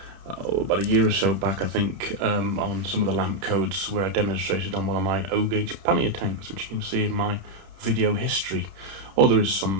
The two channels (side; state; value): left; late; 31 ms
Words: about a year or so back, I think, on some of the lamp codes where I demonstrated on one of my O-gauge pannier tanks, which you can see in my video history, or there is